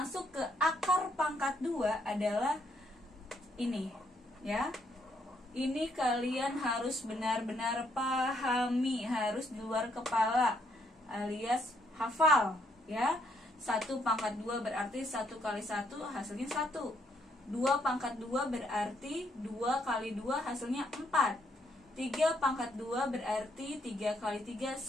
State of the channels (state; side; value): normal; both; correlation 0.73